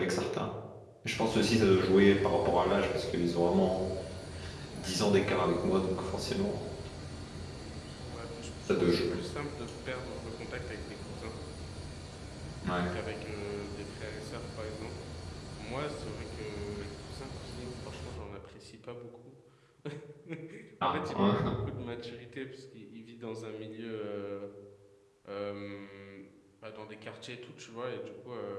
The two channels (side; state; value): both; identical; correlation 1.00